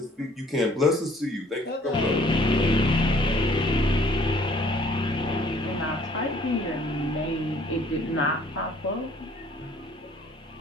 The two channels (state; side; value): normal; both; correlation 0.58